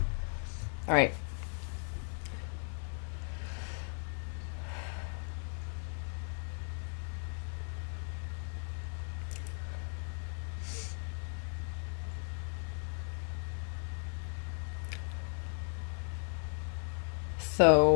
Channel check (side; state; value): right; silent; 54 dB below the other